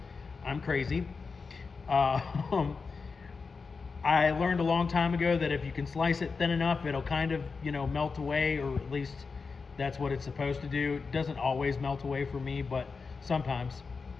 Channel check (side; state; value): right; quieter; 4.8 dB